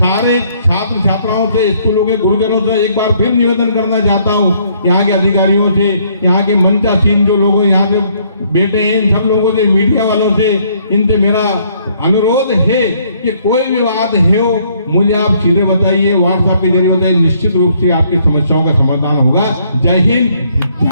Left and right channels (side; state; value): both; inverted; correlation -0.66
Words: छात्र छात्राओं से, स्कूलों के गुरुजनों से एक बार फिर निवेदन करना चाहता हूँ, यहाँ के अधिकारियों से, यहाँ के मंचासीन जो लोग यहाँ से बैठे हैं, इन सब लोगों से, मीडिया वालों से, इनसे मेरा अनुरोध है कि कोई भी बात है मुझे आप सीधे बताइए, व्हाट्सएप के जरिए बताइए। निश्चित रूप से आपकी समस्याओं का समाधान होगा। जय हिंद,